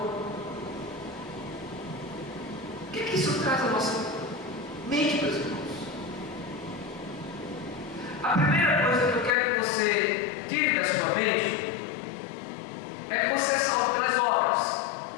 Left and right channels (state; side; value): drops out; right; at 9.3 s